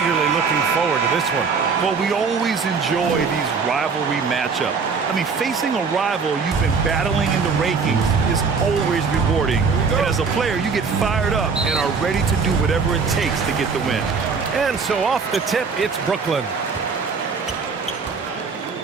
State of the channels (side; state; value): left; quieter; 5.2 dB